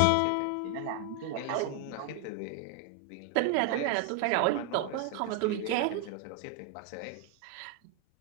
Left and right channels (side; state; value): both; different; correlation 0.00